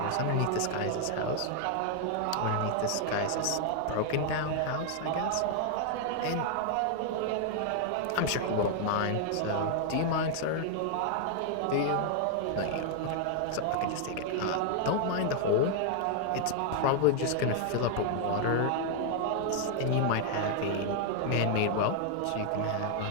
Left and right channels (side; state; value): both; different; correlation 0.00